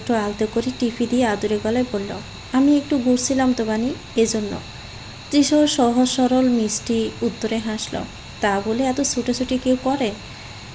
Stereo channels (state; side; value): identical; both; correlation 1.00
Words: আলতো করে টিপি দিয়ে আদুরে গলায় বলল, আমি একটু ঘুরছিলাম তো বানি, এজন্য। তৃষাও সহজ সরল মিষ্টি উত্তরে হাসল। তা বলে এত ছুটোছুটি কেউ করে?